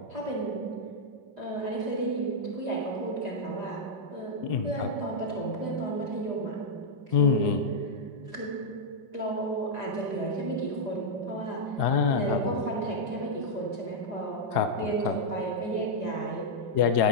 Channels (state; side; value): late; left; 4.9 ms